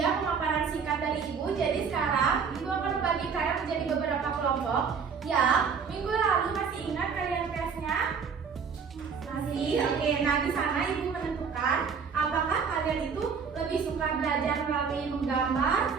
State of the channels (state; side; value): quieter; left; 6.1 dB